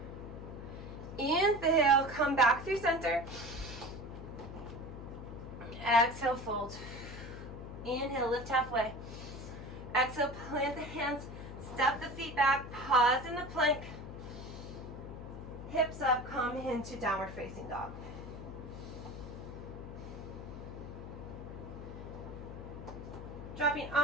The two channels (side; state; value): left; noise; hum, 10 dB below the sound